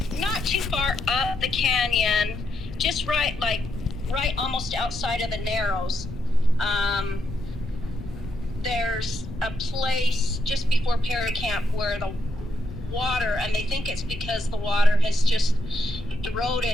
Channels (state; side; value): noise; left; rumble, 12 dB below the sound